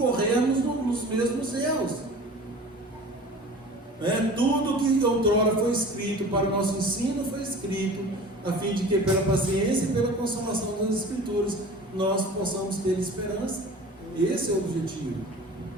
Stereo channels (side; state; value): both; normal; correlation 0.40